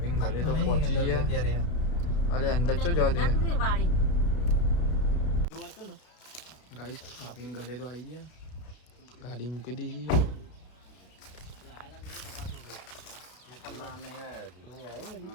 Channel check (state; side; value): late; right; 33 ms